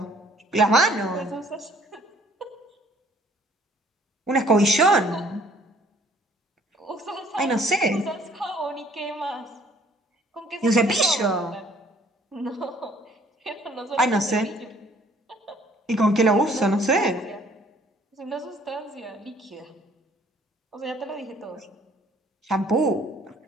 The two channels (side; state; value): both; normal; correlation 0.59